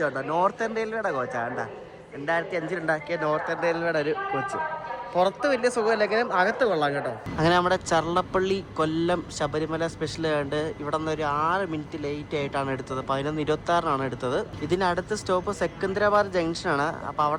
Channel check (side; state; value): both; identical; correlation 1.00